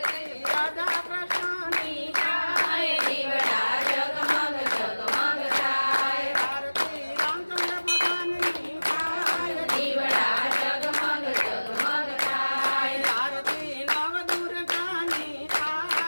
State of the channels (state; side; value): inverted; both; correlation -1.00